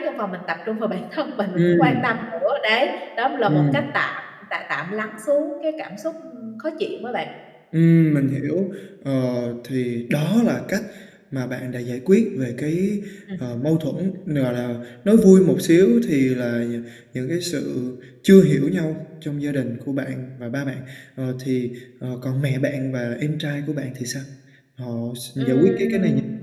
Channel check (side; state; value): both; identical; correlation 1.00